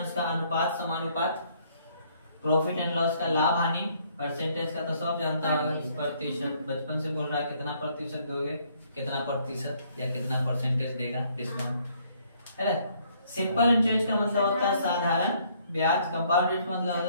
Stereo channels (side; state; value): both; inverted; correlation -0.65